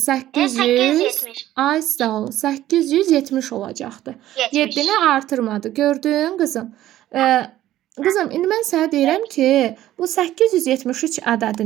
800. 870. Ay sağ ol. 870 olacaqdı. 70. 7-ni artırmadı. Gördün qızım? Qızım, indi mən sənə deyirəm ki, bu 873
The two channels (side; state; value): left; quieter; 13.8 dB